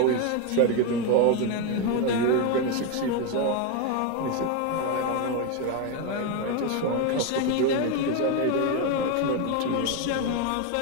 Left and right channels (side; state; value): both; different; correlation 0.02